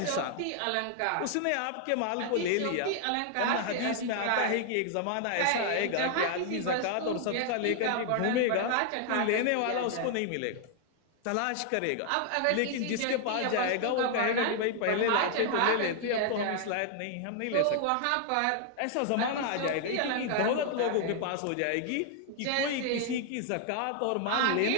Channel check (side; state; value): both; different; correlation 0.00